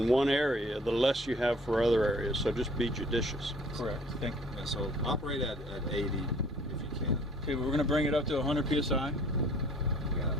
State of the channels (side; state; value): both; normal; correlation 0.54